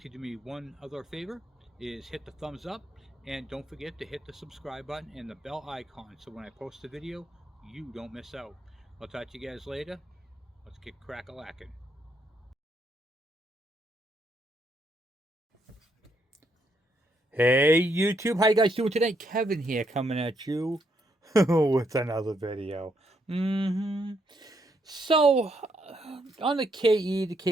do me one other favor, is hit the thumbs up, and don't forget to hit the subscribe button and the bell icon, so when I post a video, you don't miss out. I'll talk to you guys later. Let's get crack-a-lackin'. Hey YouTube, how you guys doing today? Kevin here, coming at you with another video. So on the KE, the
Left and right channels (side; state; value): both; normal; correlation 0.75